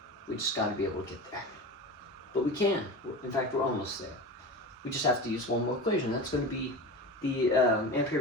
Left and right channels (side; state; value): both; normal; correlation 0.29